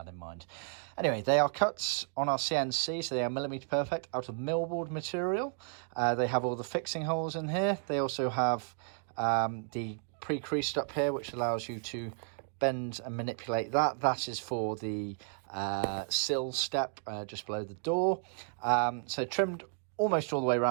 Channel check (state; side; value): silent; left; 56 dB below the other